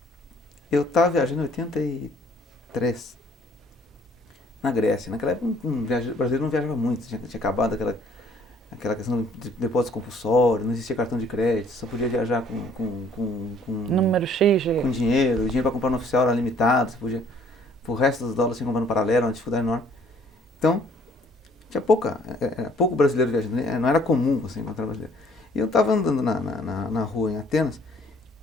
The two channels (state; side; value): normal; both; correlation 0.60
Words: eu estava viajando em 83, na Grécia. Naquela época o brasileiro não viajava muito, tinha acabado aquela questão de depósito compulsório, não existia cartão de crédito, só podia viajar com número X. Com dinheiro, o dinheiro para comprar no oficial era limitado, você podia, o resto dos dólares você comprar no paralelo, uma dificuldade enorme. Então, tinha pouco brasileiro viajando, não era comum você encontrar brasileiro. E eu estava andando na rua em Atenas